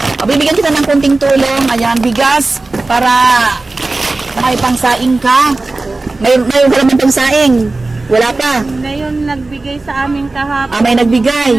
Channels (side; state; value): left; quieter; 3.3 dB